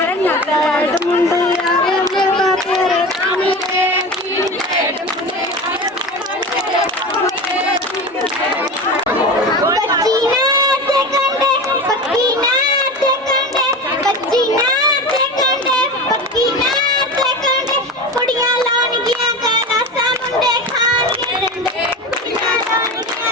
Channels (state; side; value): normal; both; correlation 0.28